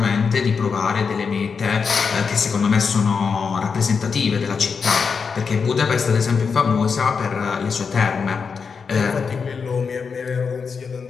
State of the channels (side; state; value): right; quieter; 5.6 dB